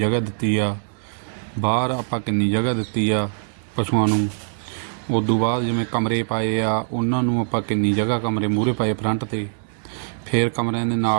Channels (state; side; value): silent; left; 58 dB below the other